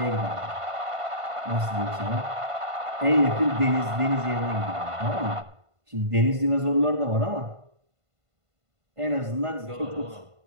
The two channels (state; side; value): late; left; 1.5 ms